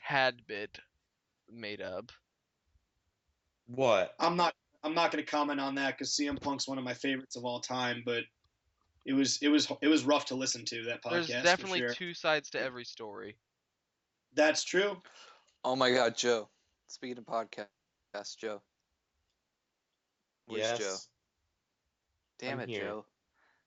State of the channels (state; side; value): identical; both; correlation 1.00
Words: bit made up. What? I'm not going to comment on that because CM Punk's one of my favorites of all time, but it was rough to listen to, that podcast. There's definitely for sure. two sides to every story. That's true. Oh my God, Joe. Speaking of podcasts, Joe. Where's Joe? Damn I'm it, here. Joe.